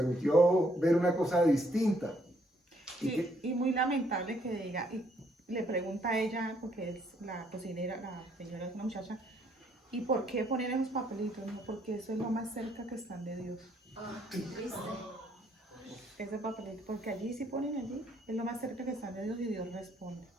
ver una cosa distinta. Y muy lamentable que diga, y le pregunta a ella, porque es la cocinera, la señora es una muchacha, ¿y por qué poner esos papelitos? No, porque eso es lo más cerca que están de Dios. Triste. Ese papelito, porque allí sí ponen allí, es lo más cerca que están de Dios y Dios responde.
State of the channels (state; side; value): normal; both; correlation 0.68